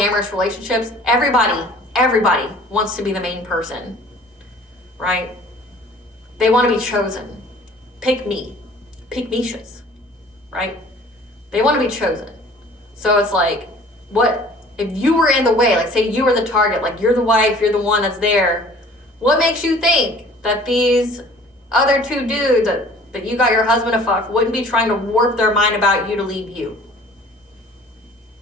relationships. Everybody wants to be the main person, right? They want to be chosen. Pick me. Pick Mishas, right? They want to be chosen. So it's like, what if you were in the way? Like, say you were the target, like, you're the wife, you're the one that's there. What makes you think that these other two dudes that you got your husband to fuck wouldn't be trying to warp their mind about you to leave you?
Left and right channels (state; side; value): normal; both; correlation 0.50